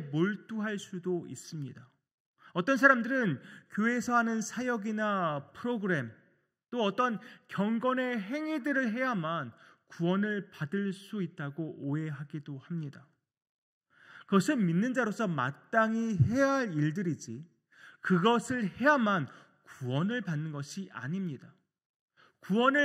수도 있습니다. 어떤 사람들은 교회에서 하는 사역이나 프로그램 또 어떤 경건의 행위들을 해야만 구원을 받을 수 있다고 오해하기도 합니다. 그것은 믿는 자로서 마땅히 해야 할 일들이지 그것을 해야만 구원을 받는 것이 아닙니다.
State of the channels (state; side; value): identical; both; correlation 1.00